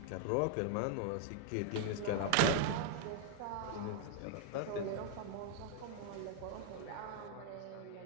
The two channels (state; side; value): different; both; correlation 0.00